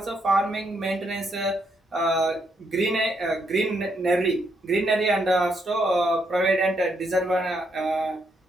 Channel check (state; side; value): normal; both; correlation 0.76